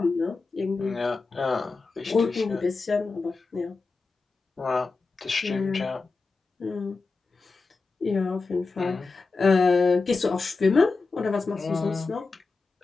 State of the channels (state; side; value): quieter; right; 4.0 dB